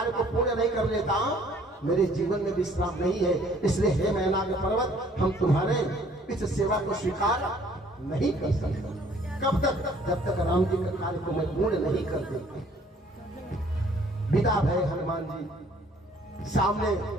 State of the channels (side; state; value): both; normal; correlation 0.58